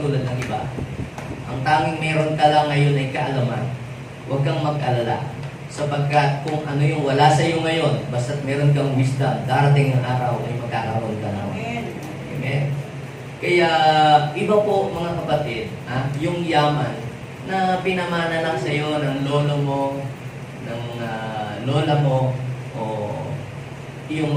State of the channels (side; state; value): both; identical; correlation 1.00